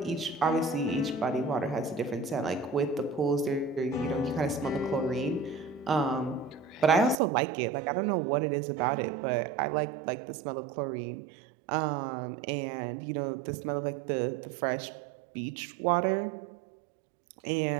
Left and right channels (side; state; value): left; drops out; at 7.2 s